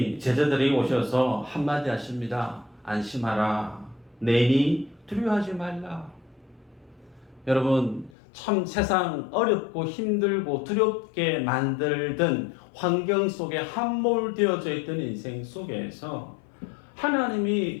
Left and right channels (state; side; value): drops out; right; at 8.1 s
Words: 제자들이 오셔서 한마디 하십니다. 안심하라. 내니 두려워하지 말라. 여러분, 참 세상 어렵고 힘들고 두렵게 만들던 환경 속에 함몰되어져 있던 인생 속에서 하나님이